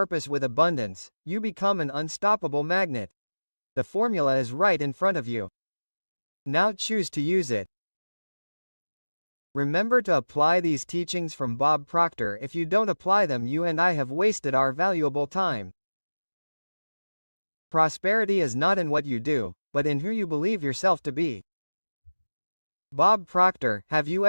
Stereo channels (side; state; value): both; inverted; correlation -1.00